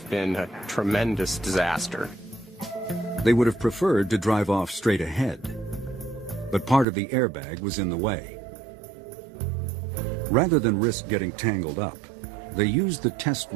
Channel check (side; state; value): left; drops out; at 6.9 s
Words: been a tremendous disaster. They would have preferred to drive off straight ahead, but part of the airbag was in the way. Rather than risk getting tangled up, they used the test